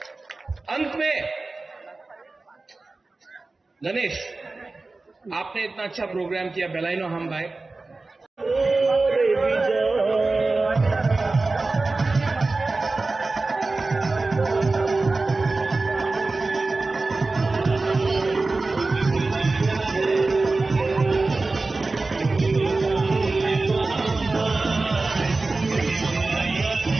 अंत में गणेश, आपने इतना अच्छा प्रोग्राम किया, बेलाइनो हम भाई।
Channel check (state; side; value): quieter; left; 3.5 dB